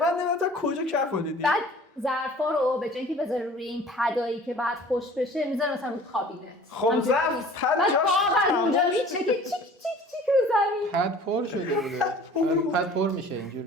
من نمیدونم تا کجا کف رو دیدی. بعد ظرفا رو به جای اینکه بذاره روی این پدایی که بعد خوش بشه میذاره مثلا روی کابینت. خب ظرف پد بعد جاش واقعا اونجا میچه که چیک چیک رو زمین. پد پر شده بوده. پد پر میشه اینجور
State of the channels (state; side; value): normal; both; correlation 0.47